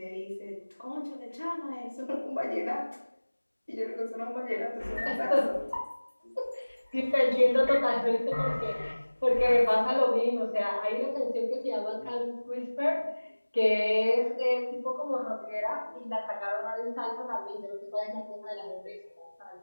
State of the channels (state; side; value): inverted; both; correlation -1.00